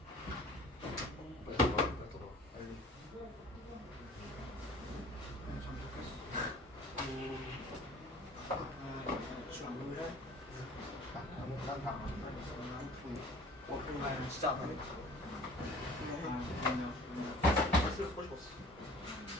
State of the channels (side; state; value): both; normal; correlation 0.47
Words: 빨리 더 봐. 빨리 더 봐. 빨리. 진짜 안 하네.